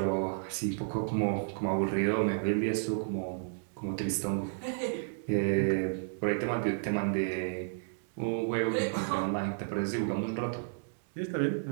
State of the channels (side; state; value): left; silent; digital silence